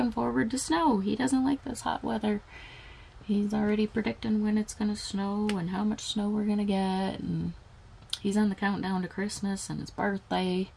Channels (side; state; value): both; identical; correlation 1.00